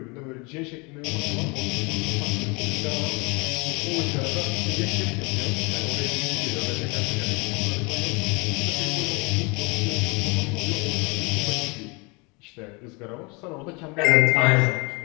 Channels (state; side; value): quieter; right; 29.0 dB